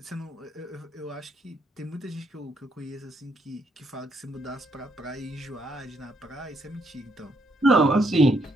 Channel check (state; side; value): normal; both; correlation 0.73